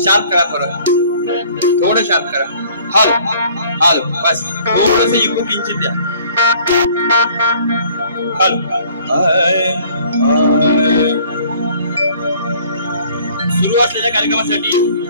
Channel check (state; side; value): inverted; both; correlation -0.55